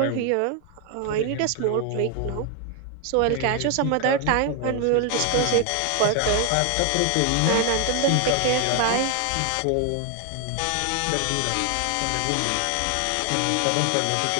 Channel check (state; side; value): different; both; correlation 0.01